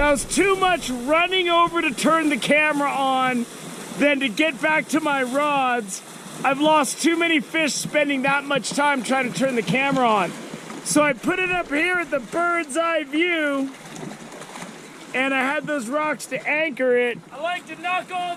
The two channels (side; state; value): both; identical; correlation 1.00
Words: was too much running over to turn the camera on than to get back to my rods. I've lost too many fish spending that much time trying to turn the camera on. So I put it up here at the bird's eye view, and I had those rocks to anchor it. I like to knock all